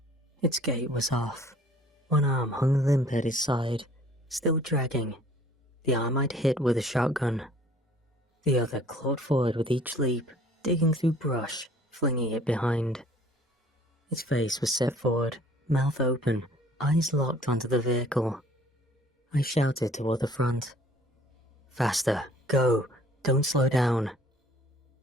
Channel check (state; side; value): normal; both; correlation 0.54